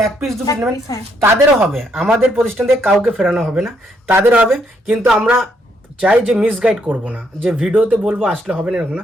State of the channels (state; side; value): normal; both; correlation 0.73